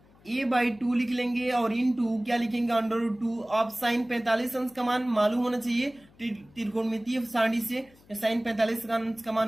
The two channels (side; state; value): left; noise; hum, 28 dB below the sound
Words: a/2 लिख लेंगे और इन टू क्या लिखेंगे √2। अब साइन 45 अंश का मान मालूम होना चाहिए त्रिकोणमितीय सारणी से। साइन 45 का अंश का